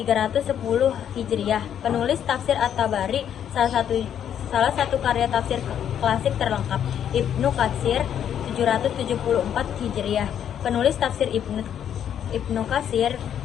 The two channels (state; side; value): quieter; right; 9.4 dB